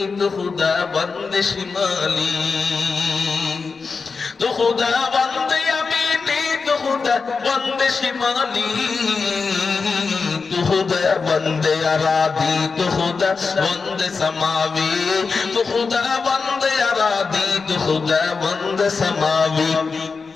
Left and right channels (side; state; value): right; quieter; 4.7 dB